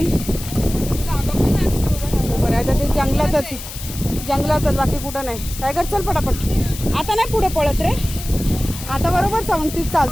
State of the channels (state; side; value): noise; left; hiss, 11 dB below the sound